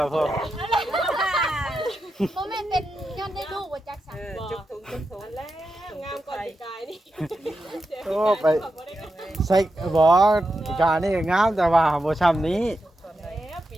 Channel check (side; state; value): both; normal; correlation 0.88